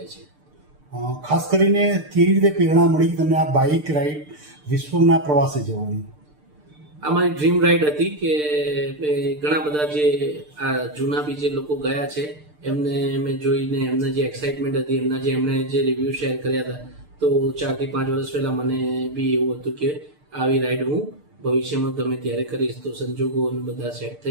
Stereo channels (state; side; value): late; left; 6.7 ms